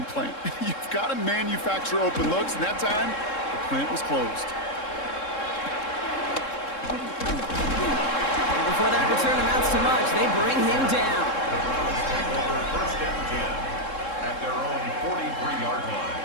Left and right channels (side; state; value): right; late; 3.7 ms